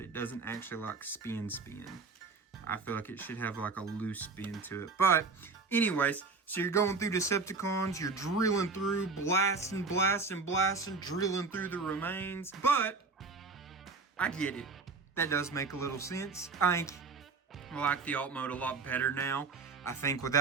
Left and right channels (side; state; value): left; quieter; 4.3 dB